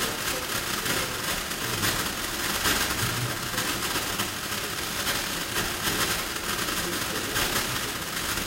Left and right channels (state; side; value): identical; both; correlation 1.00